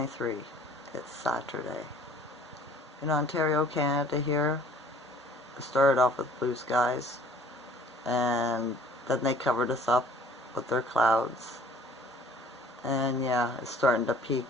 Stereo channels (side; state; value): both; normal; correlation 0.53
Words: It's Saturday. In Ontario, Canada here, it started off with blue skies, and then they covered us up with their clouds. And yeah, it's starting to peak.